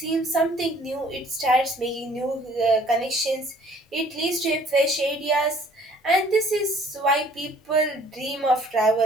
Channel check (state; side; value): normal; both; correlation 0.56